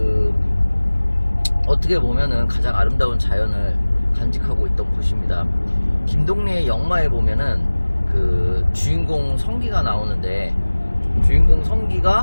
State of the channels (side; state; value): both; inverted; correlation -1.00